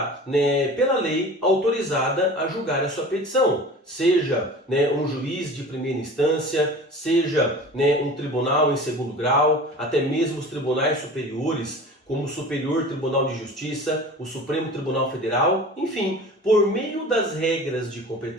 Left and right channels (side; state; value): both; normal; correlation 0.39